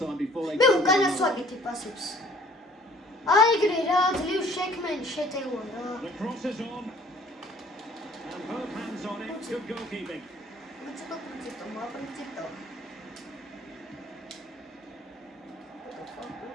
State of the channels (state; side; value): normal; both; correlation 0.55